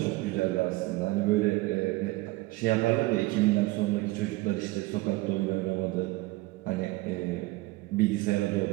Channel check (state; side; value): quieter; left; 20.8 dB